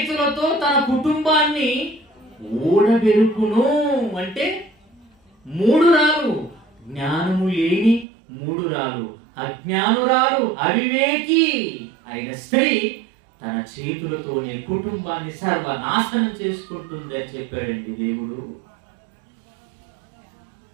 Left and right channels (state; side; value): drops out; left; at 8.1 s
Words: తన కుటుంబాన్ని ఊడబెరుకును. అంటే 3 రాలు. జ్ఞానము లేని 3 రాలు, అజ్ఞానురాలు, అవివేకి అయిన స్త్రీ తన చేతులతోనే కుటుంబాన్ని సర్వనాశనం చేసుకుంటుంది అని చెప్పాడండి దేవుడు.